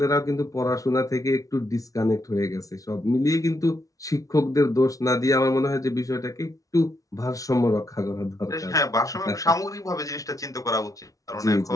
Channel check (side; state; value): right; late; 0.17 ms